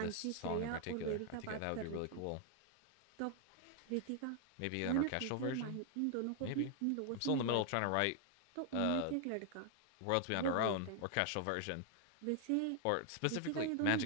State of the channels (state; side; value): different; both; correlation 0.00